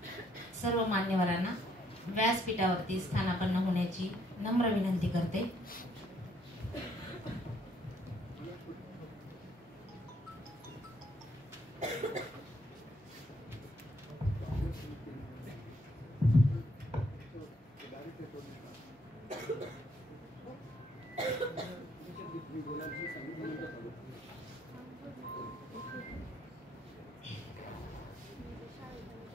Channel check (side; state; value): both; normal; correlation 0.69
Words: व्यासपीठावरती स्थानापन्न होण्याची नम्र विनंती करते।